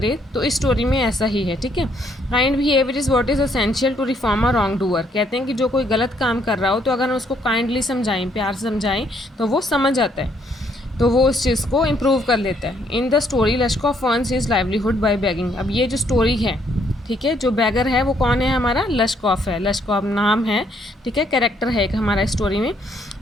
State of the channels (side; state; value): both; normal; correlation 0.69